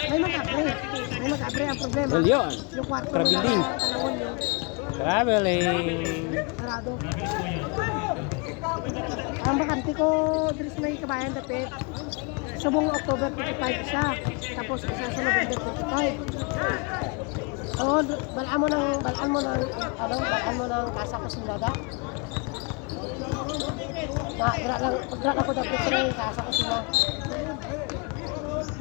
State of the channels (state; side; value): quieter; right; 31.7 dB